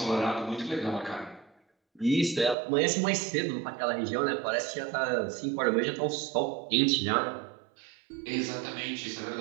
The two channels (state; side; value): drops out; left; at 2.6 s